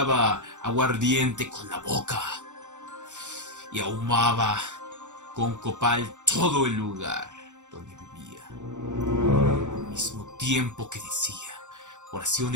aguardiente con la boca y ahumaba con copal todo el lugar donde vivía, al mismo tiempo que decía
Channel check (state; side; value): late; left; 0.85 ms